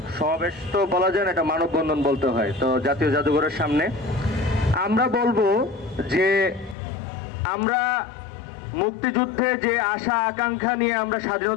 সমাবেশ তো বলা যায় না, এটা মানববন্ধন বলতে হয়। তো জাতীয় জাদুঘরের সামনে আমরা বলবো যে আমরা মুক্তিযুদ্ধে যে আশা আকাঙ্ক্ষা নিয়ে আমরা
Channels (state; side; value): drops out; right; at 6.8 s